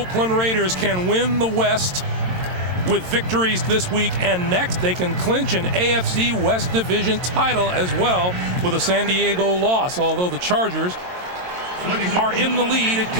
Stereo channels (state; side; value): late; left; 22 ms